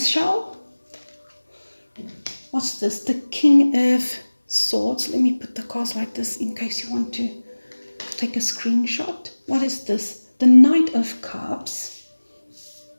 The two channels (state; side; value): inverted; both; correlation -1.00